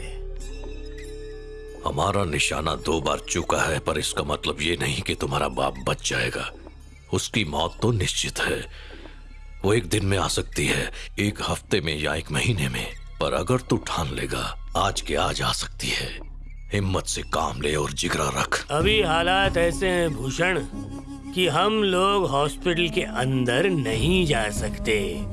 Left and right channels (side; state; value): both; identical; correlation 1.00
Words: हमारा निशाना 2 बार चुका है, पर इसका मतलब ये नहीं कि तुम्हारा बाप बच जाएगा। उसकी मौत तो निश्चित है। वो एक दिन में आ सकती है, 1 हफ्ते में या 1 महीने में, पर अगर तू ठान लेगा आज के आज आ सकती है। हिम्मत से काम ले और जिगरा रख। अभी हालात ऐसे हैं भूषण कि हम लोग हॉस्पिटल के अंदर नहीं जा सकते।